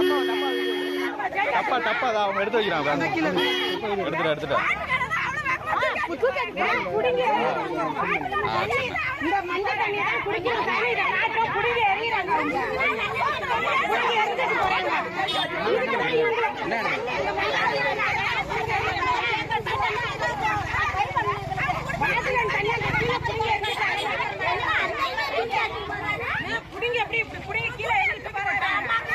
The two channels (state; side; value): identical; both; correlation 1.00